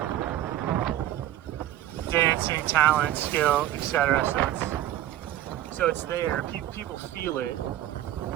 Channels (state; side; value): quieter; left; 13.1 dB